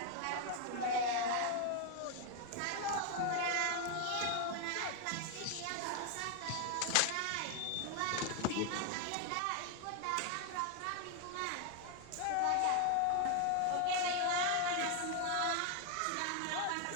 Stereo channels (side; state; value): both; different; correlation 0.01